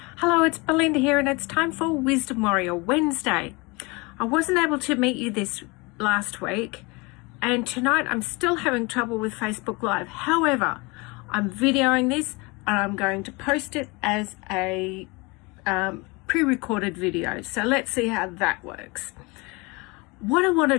Hello, it's Belinda here, and it's time for Wisdom Warrior Wednesday. I wasn't able to meet you this last week, and tonight I'm still having trouble with Facebook Live. However, I'm videoing this and I'm going to post it as a pre-recorded video. So let's see how that works. What I want to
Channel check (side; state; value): right; quieter; 26.5 dB